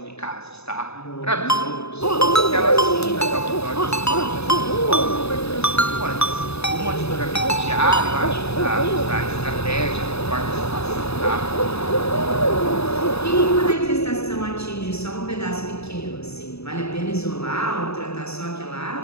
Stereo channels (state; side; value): late; right; 0.79 ms